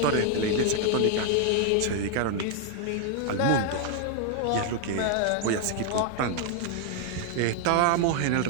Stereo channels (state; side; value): different; both; correlation 0.00